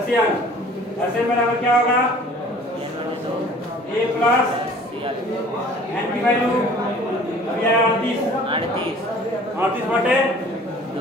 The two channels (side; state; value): both; normal; correlation 0.49